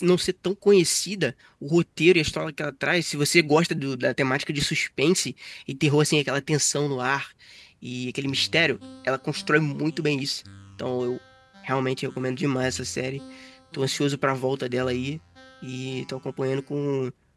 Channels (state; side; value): identical; both; correlation 1.00